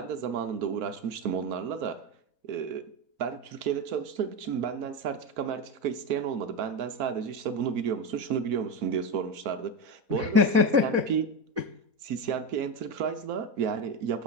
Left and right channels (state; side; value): late; left; 4.5 ms